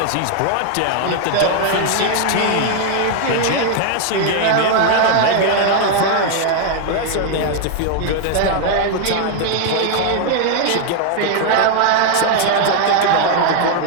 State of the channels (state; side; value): different; both; correlation 0.01